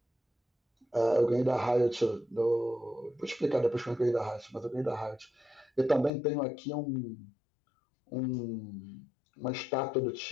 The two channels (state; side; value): drops out; right; at 6.1 s